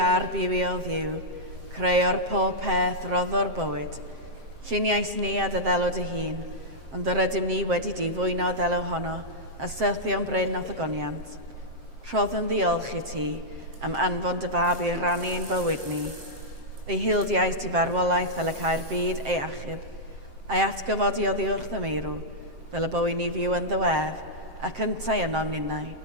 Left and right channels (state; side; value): late; left; 7.6 ms